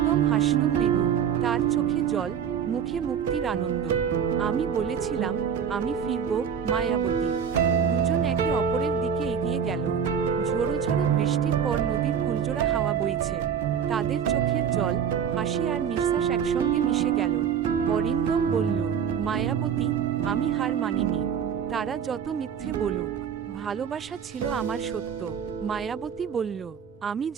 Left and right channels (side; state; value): left; quieter; 7.7 dB